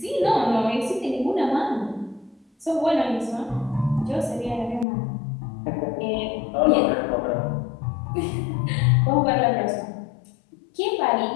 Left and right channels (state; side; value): drops out; right; at 4.9 s